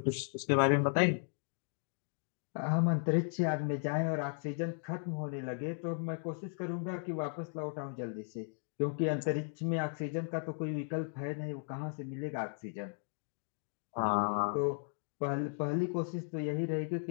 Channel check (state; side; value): silent; right; 54 dB below the other